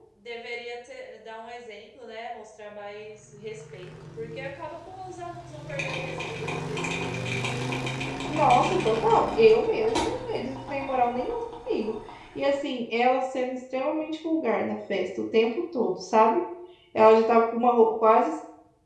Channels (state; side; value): identical; both; correlation 1.00